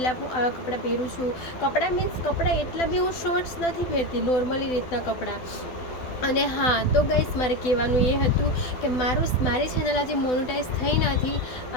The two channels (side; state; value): right; late; 12 ms